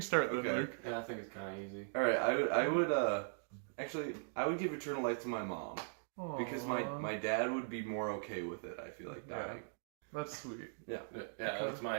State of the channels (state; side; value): silent; left; digital silence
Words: then, Okay. Luke. Yeah, I think it's kind of easy. Alright, I would give eternal life to my mom. Because my dad would be more okay with it, I feel like, dying. That's sweet. Yeah, that's my